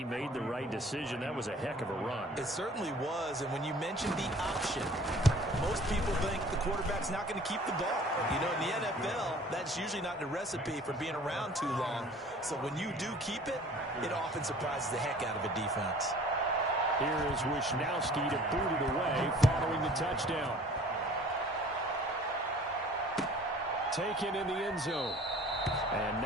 made the right decision. That was a heck of a run. It certainly was, and when you mentioned the option, most people think the quarterback's not going to keep the ball. You know, in the NFL, that's usually not the recipe for being around too long. So when you do keep it, it often surprises the heck out of a defense. Here is Wisnowski to boot it away following the touchdown. taken in the end zone. And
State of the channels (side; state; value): both; normal; correlation 0.49